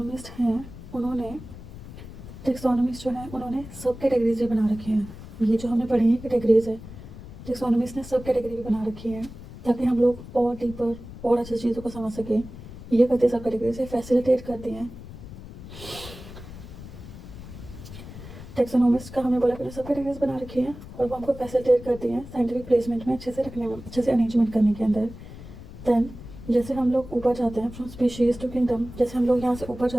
उन्होंने सब कैटेगरीज भी बना रखे हैं। ये जो हमने पढ़ी है कैटेगरीज है, टेक्सोनोमिस्ट ने सब कैटेगरी भी बना रखी है ताकि हम लोग और डीपर और अच्छी चीज़ों को समझ सकें। ये करते सब कैटेगरी से फैसिलिटेट करते हैं। टेक्सोनोमिस्ट का हमने बोला कि सब कैटेगरीज बना रखी हैं और वो हमको फैसिलिटेट करती हैं साइंटिफिक प्लेसमेंट में अच्छे से रखने में, अच्छे से अरेंजमेंट करने के अंदर। देन जैसे हम लोग ऊपर जाते हैं फ्रॉम स्पीशीज़ टू किंगडम, जैसे हम लोग यहाँ से ऊपर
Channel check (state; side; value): noise; left; rumble, 14 dB below the sound